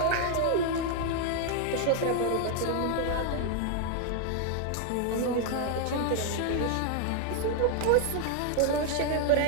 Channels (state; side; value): different; both; correlation 0.00